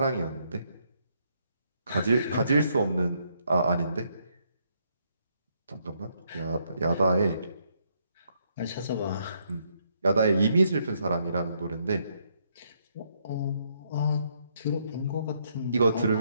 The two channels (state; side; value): inverted; both; correlation -0.74